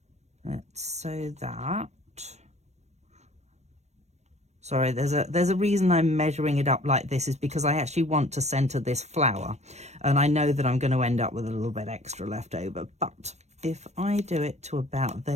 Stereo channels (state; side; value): late; left; 0.32 ms